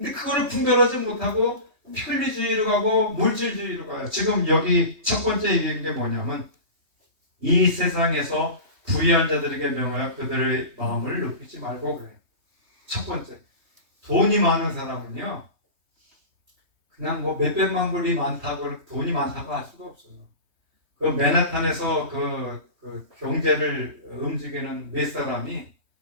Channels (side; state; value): left; late; 3.2 ms